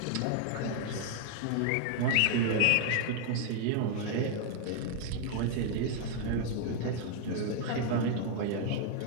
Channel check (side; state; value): both; different; correlation 0.00